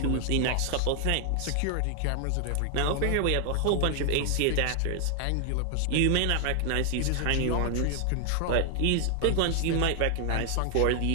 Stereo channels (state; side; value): different; both; correlation 0.00